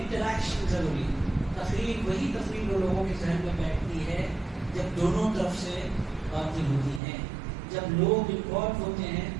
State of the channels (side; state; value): left; drops out; at 7.0 s